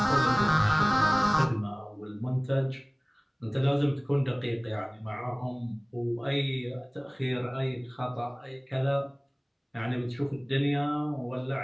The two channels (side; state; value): both; identical; correlation 1.00